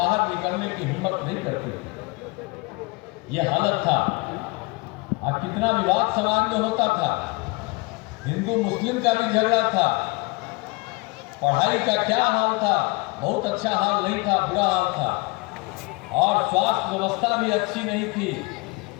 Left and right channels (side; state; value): right; quieter; 26.5 dB